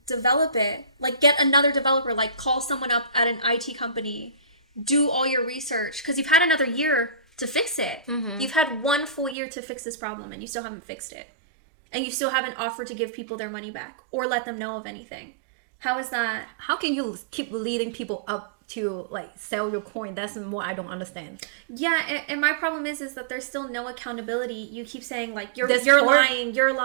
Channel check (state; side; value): drops out; left; at 9.3 s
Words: develop it. Like, get another developer. Like, call someone up at an IT company. Do all your research. Because you've had another year to fix it. Mm-hmm. You've had 1 full year to fix this problem, and you still haven't fixed it. And you still haven't offered to give people their money back or let them know of anything. How is that? How can you keep leading people up to like sell your coin? That's what I don't understand. Yeah, and my problem is that there's still no accountability. You keep saying like you're lying.